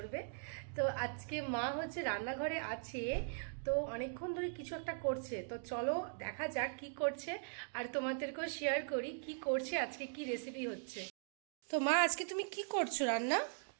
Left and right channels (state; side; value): silent; left; digital silence